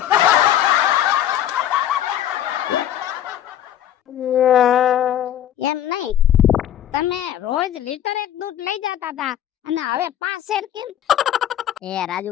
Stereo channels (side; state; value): right; quieter; 11.2 dB